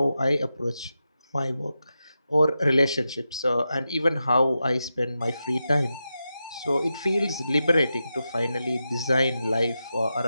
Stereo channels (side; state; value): both; inverted; correlation -0.90